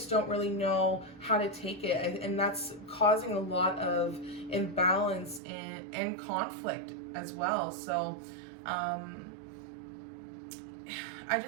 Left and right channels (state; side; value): drops out; left; at 5.4 s